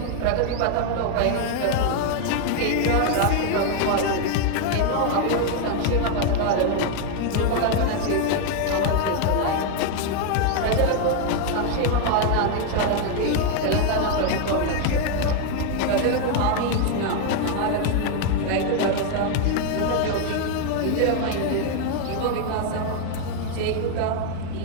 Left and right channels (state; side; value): different; both; correlation 0.01